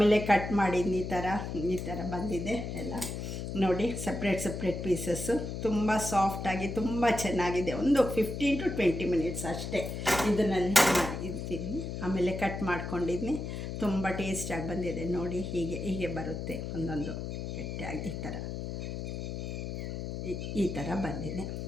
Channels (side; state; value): left; noise; hum, 5 dB below the sound